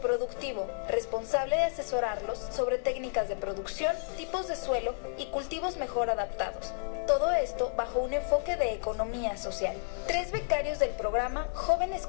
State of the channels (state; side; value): silent; right; 57 dB below the other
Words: responsable de asesorarlos sobre técnicas de producción, tipos de suelo y cultivos mejor adaptados. Todo esto bajo un enfoque de economía social. 3 becarios del programa Jóvenes